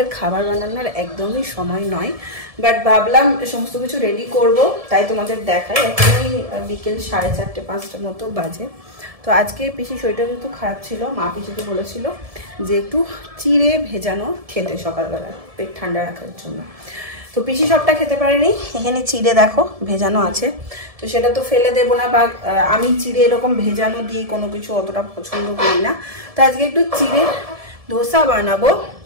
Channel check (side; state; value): left; late; 1.7 ms